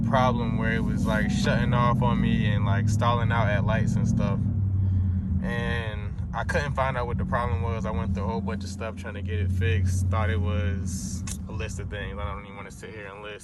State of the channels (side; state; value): both; identical; correlation 1.00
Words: where it was like shutting off on me and like stalling out at lights and stuff. And I couldn't find out what the problem was. I went through a whole bunch of stuff trying to get it fixed. Thought it was a list of things. I don't even want to sit here and